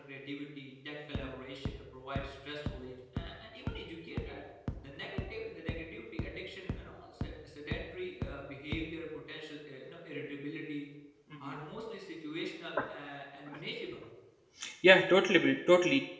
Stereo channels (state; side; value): identical; both; correlation 1.00